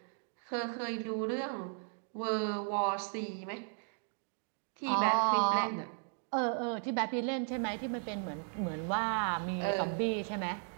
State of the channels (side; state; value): left; silent; 54 dB below the other